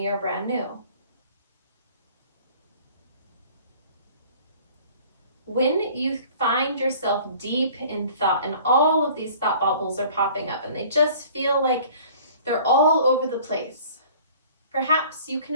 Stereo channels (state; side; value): inverted; both; correlation -0.49